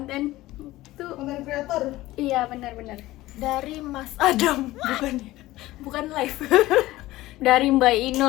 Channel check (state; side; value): quieter; right; 17.3 dB